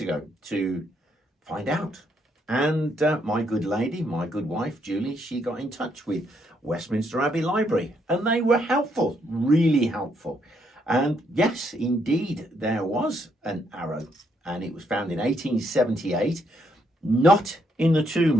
ago to find out. And my good lady, my good wife, Julie, she got in touch with Westminster Abbey Library. And they were helpful, really helpful. And yes, indeed, there was an arrow. And it was found in 1878, not in the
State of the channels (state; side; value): normal; both; correlation 0.74